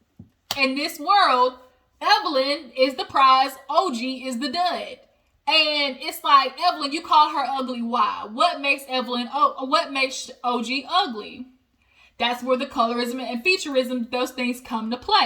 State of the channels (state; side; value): identical; both; correlation 1.00